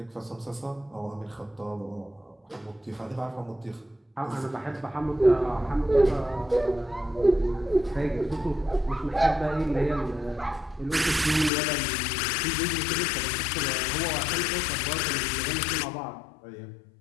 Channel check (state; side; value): drops out; right; at 11.5 s